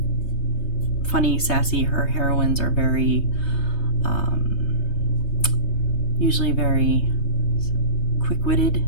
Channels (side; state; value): right; late; 3.3 ms